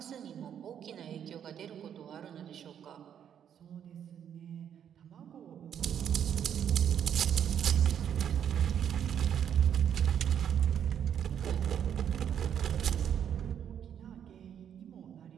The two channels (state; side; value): quieter; left; 9.0 dB